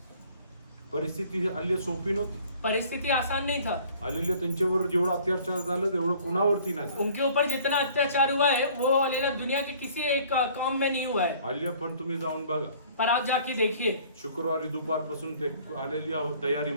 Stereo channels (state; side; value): inverted; both; correlation -0.53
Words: परिस्थिती हालेलुया सोपी नव्हती. परिस्थिति आसान नहीं था। हालेलुया, त्यांच्यावर जेवढं अत्याचार झालं तेवढं कोणावरती नाही झालं. उनके ऊपर जितना अत्याचार हुआ है वो हालेलुया दुनिया के किसी एक कौम में नहीं हुआ है। हालेलुया, पण तुम्ही जाऊन बघा, पर आप जाके देखिए, शुक्रवारी दुपारपासून ते हालेलुया